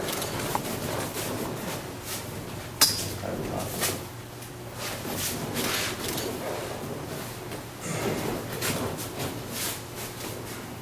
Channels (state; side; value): identical; both; correlation 1.00